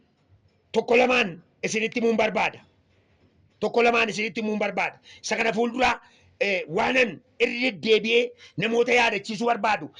tokko lamaan isinitti himuun barbaada. Isa kana fuuldura waanan irra deebi'ee namoota yaadachiisuu barbaadu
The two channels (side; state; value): both; identical; correlation 1.00